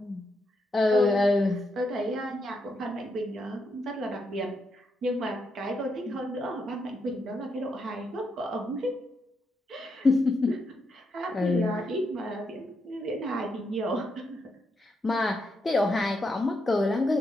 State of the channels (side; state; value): both; normal; correlation 0.81